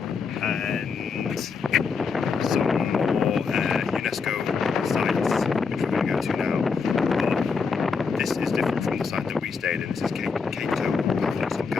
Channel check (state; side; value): quieter; right; 5.2 dB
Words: and some more UNESCO sites which we're going to go to now. But this is different from the site that we stayed in. This is KEO Paphos or